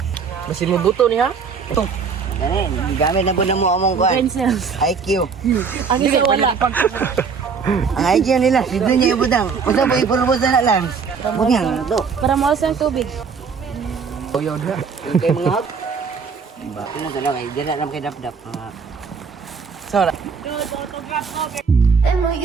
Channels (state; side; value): quieter; left; 5.6 dB